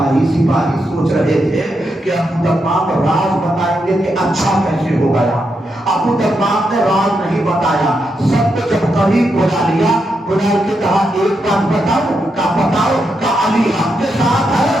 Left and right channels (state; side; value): normal; both; correlation 0.83